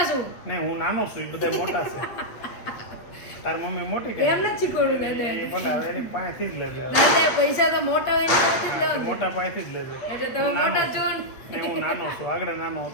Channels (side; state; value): right; late; 8.3 ms